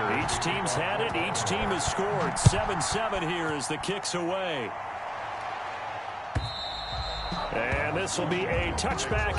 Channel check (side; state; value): both; identical; correlation 1.00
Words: Each team's had it. Each team has scored. 7-7 here as the kick's away. And this will be a